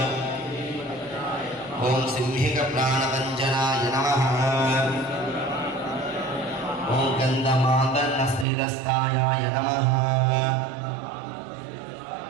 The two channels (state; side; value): drops out; left; at 8.5 s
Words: ॐ सिंहिकप्राणपञ्चनाय नमः ॐ गन्धमादन्नस्निरस्तायाय नमः